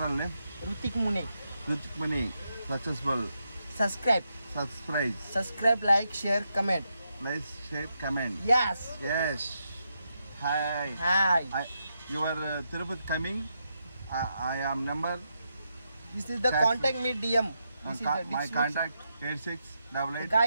name? Rutik Mune. Rutik Mune. Successful. Subscribe. Subscribe. Like, share, comment. Like, share, comment. Yes. Yes. Hi. Hi. You are Tirupati coming. I am number. This is the contact me DM. This is the My description. contact 8688.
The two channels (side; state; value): both; inverted; correlation -0.83